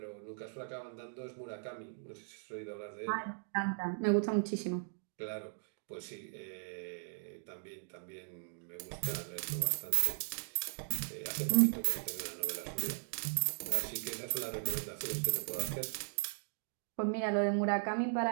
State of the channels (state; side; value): silent; left; digital silence